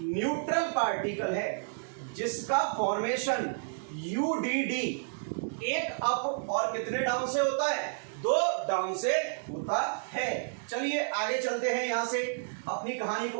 न्यूट्रल पार्टिकल है, जिसका फॉर्मेशन यूडीडी 1 अप और कितने डाउन से होता है? 2 डाउन से होता है। चलिए आगे चलते हैं, यहां से अपनी कहानी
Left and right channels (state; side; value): silent; left; digital silence